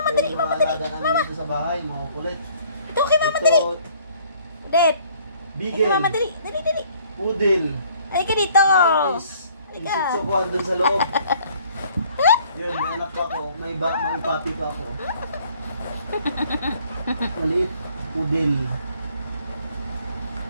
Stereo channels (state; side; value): inverted; both; correlation -0.59